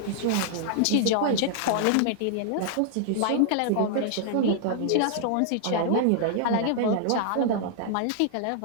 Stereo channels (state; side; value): different; both; correlation -0.01